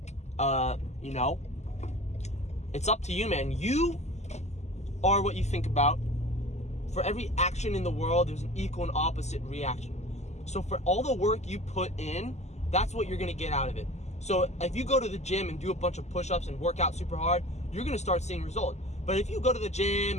it's up to you, man. You are what you think about. For every action in the world, there's an equal and opposite reaction. So for all the work you put in, that's what you're going to get out of it. So if you go to the gym and do a bunch of push-ups and work out super hard, you're going to start seeing results. But if you go to the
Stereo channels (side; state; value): right; late; 0.33 ms